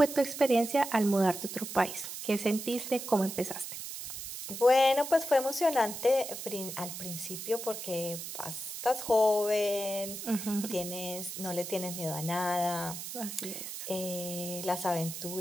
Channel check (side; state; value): right; noise; hiss, 8 dB below the sound